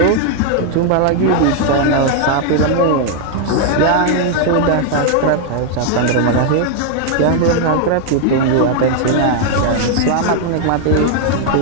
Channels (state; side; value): different; both; correlation 0.00